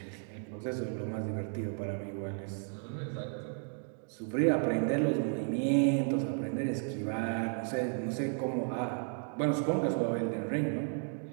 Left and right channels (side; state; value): left; silent; 55 dB below the other